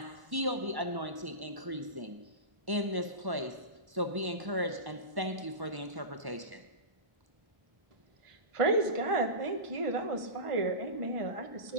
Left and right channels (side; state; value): left; late; 1.1 ms